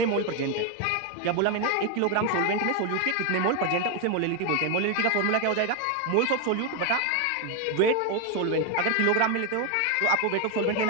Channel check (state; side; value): different; both; correlation 0.01